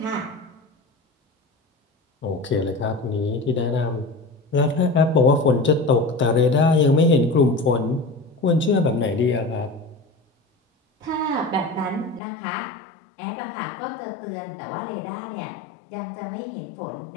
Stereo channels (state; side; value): drops out; right; at 12.2 s